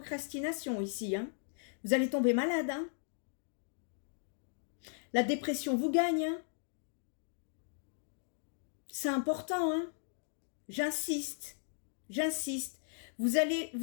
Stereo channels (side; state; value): right; silent; digital silence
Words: ici, hein. Vous allez tomber malade. Hein. La dépression vous gagne. Hein. C'est important. Hein. J'insiste. Vous